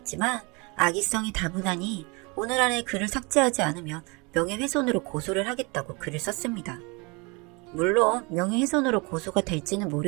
악의성이 다분하니 오늘 안에 글을 삭제하지 않으면 명예훼손으로 고소를 하겠다고 글을 썼습니다. 물론 명예훼손으로 고소가 될지는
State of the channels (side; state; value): left; quieter; 28.9 dB